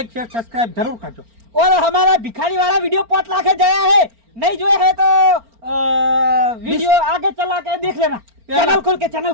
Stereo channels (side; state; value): left; late; 4.4 ms